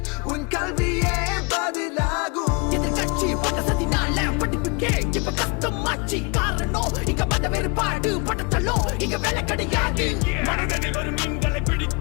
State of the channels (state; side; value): quieter; right; 30.4 dB